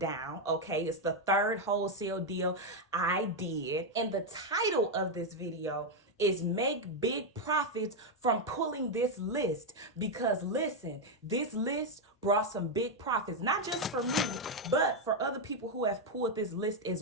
okay? It's the third wholesale deal I did. And the title of this video is Make Big Profits from Pulling This List. Because listen, this list brought some big profits, not just for me, but for other people who have pulled this list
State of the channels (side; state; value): both; normal; correlation 0.03